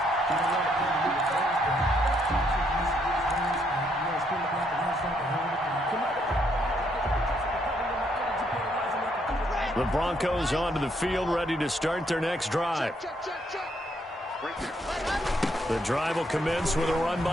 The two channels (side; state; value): both; normal; correlation 0.73